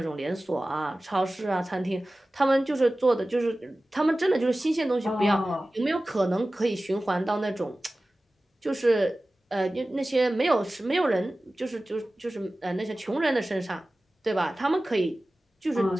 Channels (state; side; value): normal; both; correlation 0.96